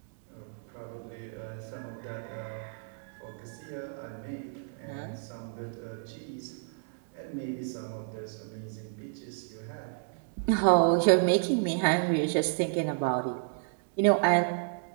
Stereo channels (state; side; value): silent; left; digital silence